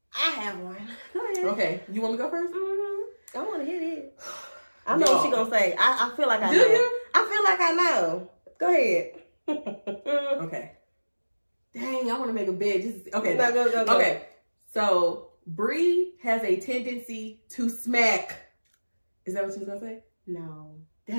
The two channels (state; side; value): inverted; both; correlation -1.00